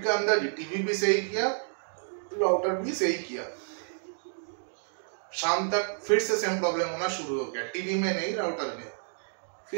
के अंदर टीवी भी सही किया, राउटर भी सही किया। शाम तक फिर से सेम प्रॉब्लम होना शुरू हो गया, टीवी में नहीं राउटर में।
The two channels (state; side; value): silent; left; 58 dB below the other